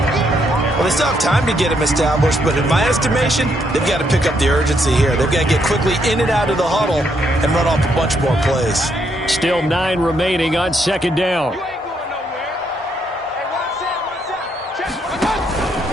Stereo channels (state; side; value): normal; both; correlation 0.74